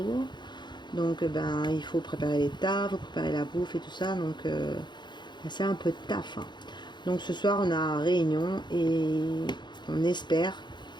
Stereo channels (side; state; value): right; late; 0.22 ms